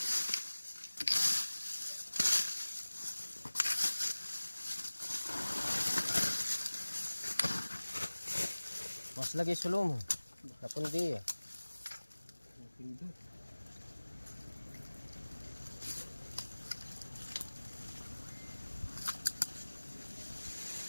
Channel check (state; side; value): inverted; both; correlation -1.00